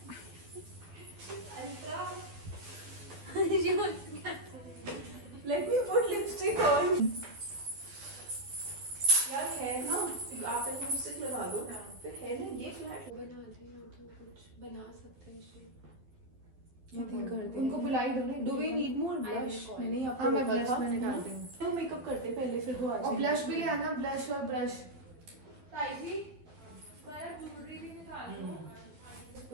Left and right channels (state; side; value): late; left; 12 ms